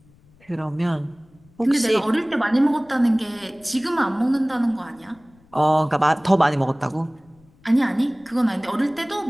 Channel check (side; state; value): left; noise; rumble, 30 dB below the sound